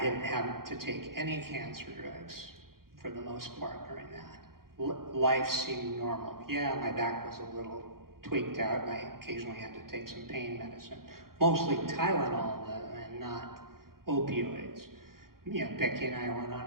have to take any cancer drugs for the most part during that. Life seemed normal. Yeah, my back was a little tweaked out, and I occasionally had to take some pain medicine. Mostly Tylenol, though, and not opioids. Becky and I went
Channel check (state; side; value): late; left; 0.92 ms